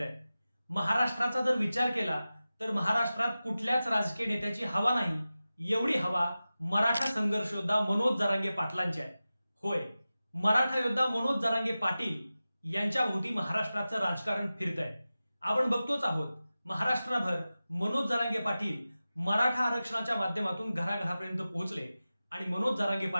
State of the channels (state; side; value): inverted; both; correlation -0.95